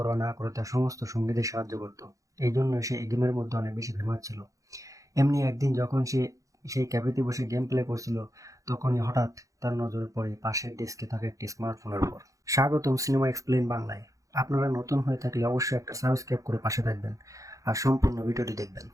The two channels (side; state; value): left; late; 0.16 ms